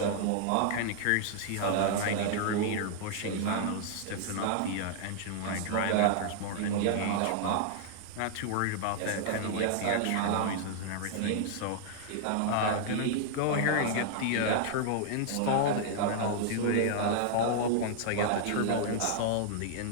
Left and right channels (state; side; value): different; both; correlation -0.01